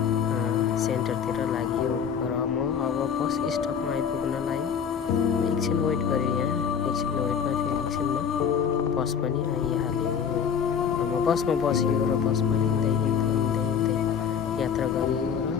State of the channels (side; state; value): right; quieter; 7.3 dB